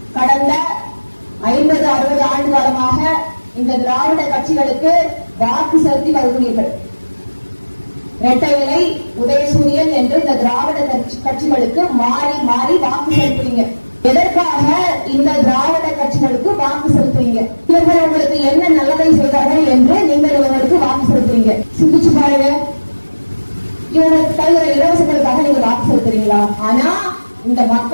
கடந்த 50-60 ஆண்டு காலமாக இந்த திராவிட கட்சிகளுக்கு வாக்கு செலுத்தி வருகிறீர்கள். இரட்டை இலை, உதயசூரியன் என்று இந்த திராவிட கட்சிகளுக்கு மாறி மாறி வாக்கு செலுத்துறீங்க. எதற்காக இந்த திராவிட கட்சிகளுக்கு வாக்கு செலுத்துறீங்க? இவர்கள் உங்களுக்கு என்ன நல்லதை செய்தார்கள் என்று நீங்கள் இவர்களுக்கு வாக்கு செலுத்துறீங்க? சிந்திச்சு பாருங்க. இவங்களுக்கு தருகிற இலவசங்களுக்காக நீங்க வாக்கு செலுத்துறீங்களா? ஆனா இந்த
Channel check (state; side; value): inverted; both; correlation -1.00